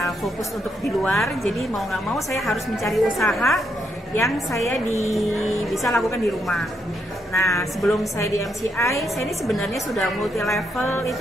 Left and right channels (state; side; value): normal; both; correlation 0.78